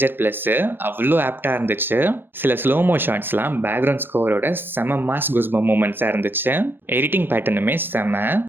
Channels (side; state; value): left; late; 0.10 ms